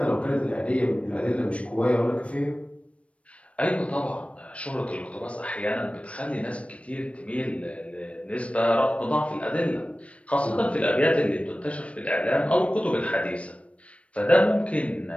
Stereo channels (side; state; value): right; late; 0.063 ms